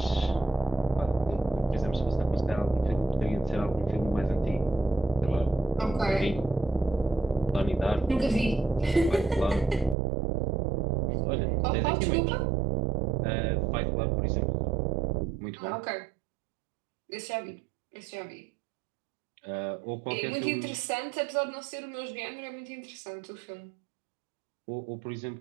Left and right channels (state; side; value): drops out; left; at 10.0 s